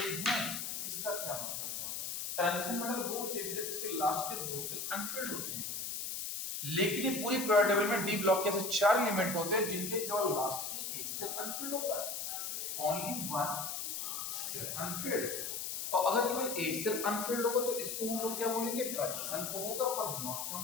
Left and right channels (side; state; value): left; noise; hiss, 4 dB below the sound